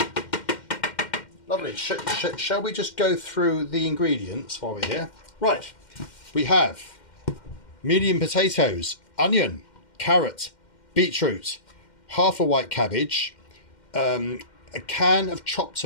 Lovely. Shall we just go through the ingredients while we're here? Right, we have medium potatoes, onion, carrot, beetroot, half a white cabbage, a can of chopped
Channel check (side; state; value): right; late; 2.1 ms